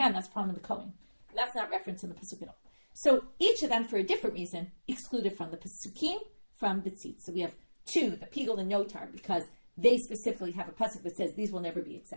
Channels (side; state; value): both; inverted; correlation -1.00